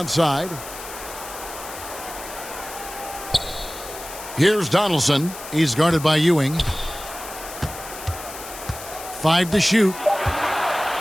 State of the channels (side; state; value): left; noise; hiss, 12 dB below the sound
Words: Here's Donaldson. He's guarded by Ewing. 5 to shoot.